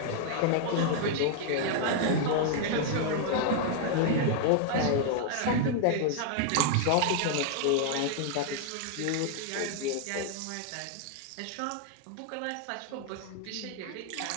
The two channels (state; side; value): different; both; correlation 0.00